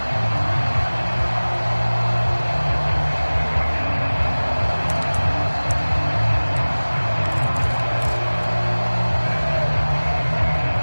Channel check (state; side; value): inverted; both; correlation -1.00